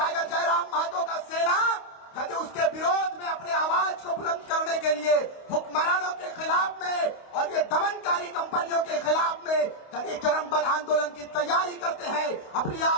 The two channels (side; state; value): right; late; 28 ms